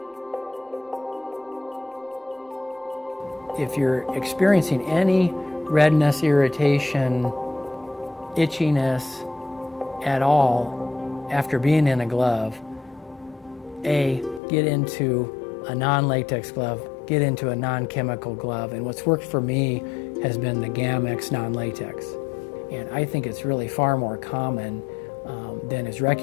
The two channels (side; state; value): right; drops out; at 14.4 s